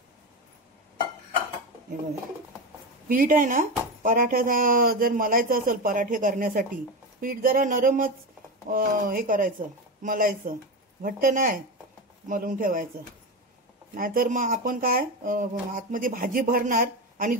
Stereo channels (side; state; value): both; normal; correlation 0.18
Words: हे बघा, पीठ आहे ना, पराठ्याचा जर मलायचं असेल पराठे करण्यासाठी पीठ जरा नरमच हे करायचं, मलायचं, घट्ट नाही मलून ठेवायचं. नाहीतर मग आपण काय आतमध्ये भाजी भरणार आणि